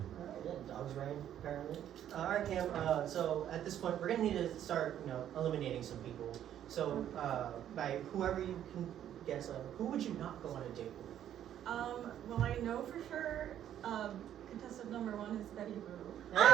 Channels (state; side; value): quieter; left; 10.7 dB